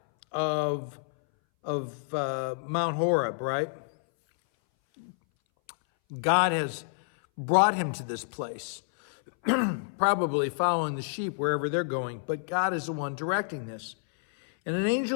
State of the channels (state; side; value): silent; right; 59 dB below the other